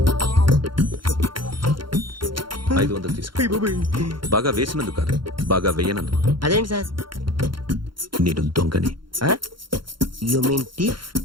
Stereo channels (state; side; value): late; left; 0.73 ms